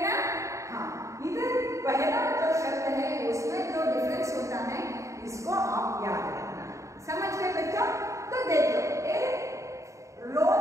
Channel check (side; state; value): left; late; 0.15 ms